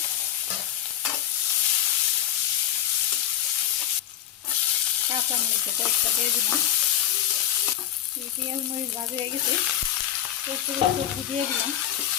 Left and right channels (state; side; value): quieter; right; 11.0 dB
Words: কাঁচা মরিচের কয়েকটা দিয়ে দিলাম। পেঁয়াজ মরিচ ভাজি হয়ে গেছে, সবজি দিয়ে দিলাম,